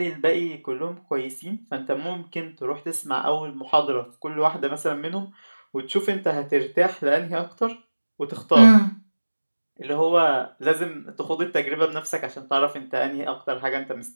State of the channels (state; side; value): inverted; both; correlation -1.00